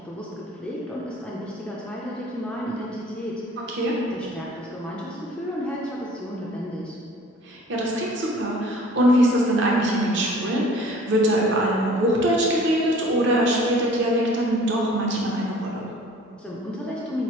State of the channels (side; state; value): both; normal; correlation 0.50